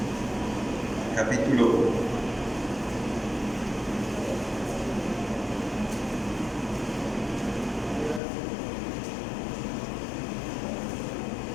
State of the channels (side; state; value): right; drops out; at 8.2 s